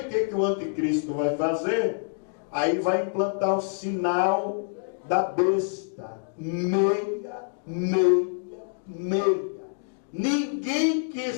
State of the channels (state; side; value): silent; right; digital silence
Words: o que o anticristo vai fazer? Aí vai implantar o sinal da besta. Meia. Ninguém que